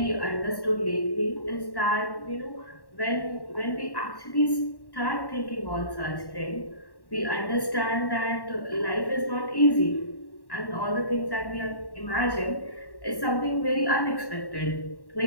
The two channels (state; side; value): late; right; 1.1 ms